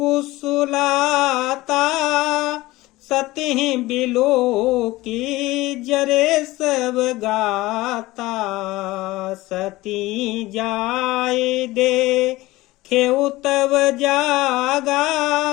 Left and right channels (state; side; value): quieter; right; 19.0 dB